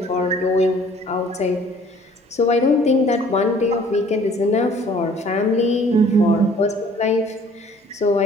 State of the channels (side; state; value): both; normal; correlation 0.55